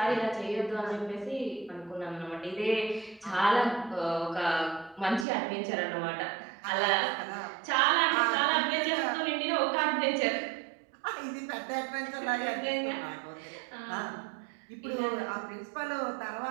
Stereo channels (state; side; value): drops out; left; at 5.2 s